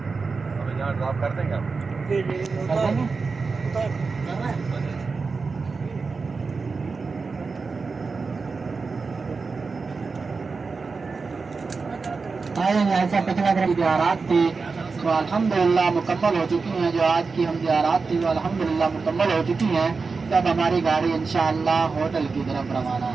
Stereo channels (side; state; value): left; quieter; 4.5 dB